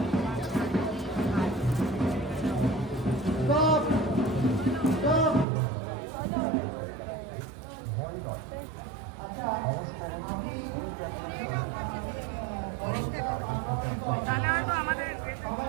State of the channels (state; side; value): drops out; left; at 5.5 s